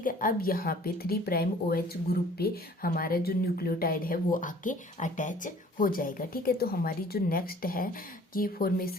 है। अब यहाँ पे 3 प्राइम OH ग्रुप पे हमारा जो न्यूक्लियोटाइड है वो आके अटैच हो जाएगा, ठीक है। तो हमारी जो नेक्स्ट है कि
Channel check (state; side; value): normal; both; correlation 0.52